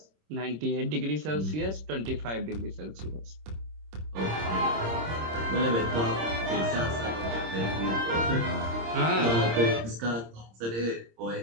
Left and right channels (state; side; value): late; left; 26 ms